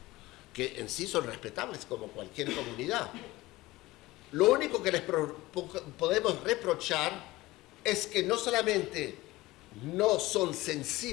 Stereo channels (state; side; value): quieter; right; 19.1 dB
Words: que en sí son respetables como cualquier comunidad. Lo único que les podemos reprochar es que no solamente no son